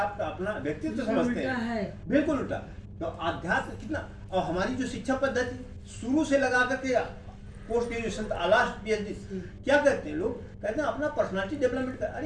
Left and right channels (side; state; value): both; identical; correlation 1.00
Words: अपना व्यक्तित्व समझते उल्टा हैं, है। बिल्कुल उल्टा, तो अध्यात्म कितना। और हमारी जो शिक्षा पद्धति शुरू से लगा करके पोस्ट ग्रेजुएशन लास्ट पीएचडी क्या कहते हैं लोग, कहते हैं अपना पर्सनालिटी डेवलपमेंट कर।